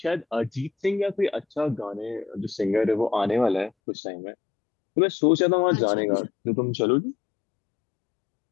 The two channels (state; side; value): drops out; right; at 3.7 s